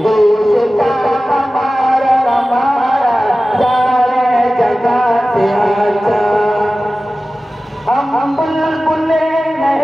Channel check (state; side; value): normal; both; correlation 0.96